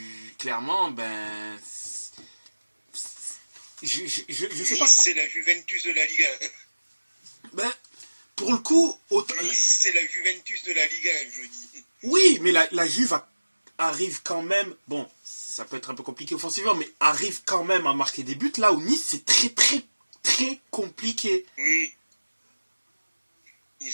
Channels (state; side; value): inverted; both; correlation -1.00